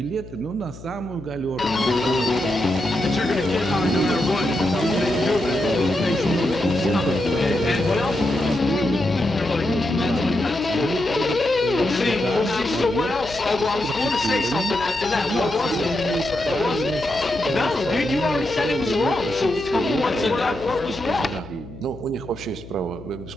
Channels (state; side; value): noise; left; hum, 16 dB below the sound